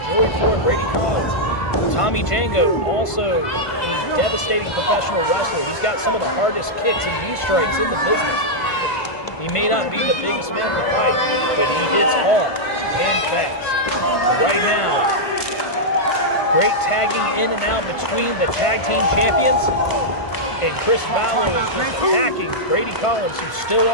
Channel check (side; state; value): right; late; 1.5 ms